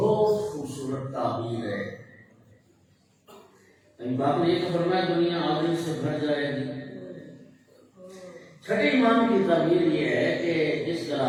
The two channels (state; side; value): identical; both; correlation 1.00